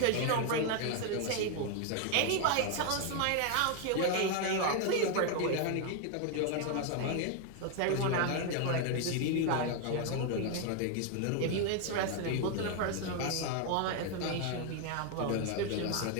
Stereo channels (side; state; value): both; different; correlation 0.01